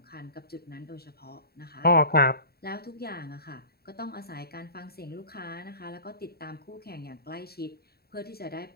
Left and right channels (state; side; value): late; right; 0.45 ms